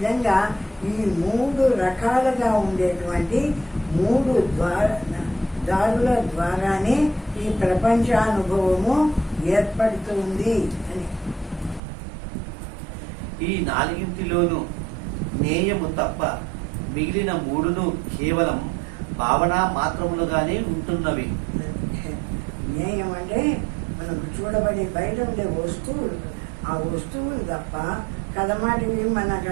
ఈ 3 రకాలుగా ఉండేటువంటి 3 దారుల ద్వారానే ఈ ప్రపంచానుభవము ఏర్పడుతుంది అని. ఈ 4 జ్ఞేయము తప్ప మిగిలిన 3 కేవలం భావన మాత్రములుగానే ఉంటున్నవి. జ్ఞేయం అంటే మనకు చూడబడి బయట ఉండే వస్తువులు, ఆ వస్తువులు తప్ప కదమాటివి మన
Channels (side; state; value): left; drops out; at 11.8 s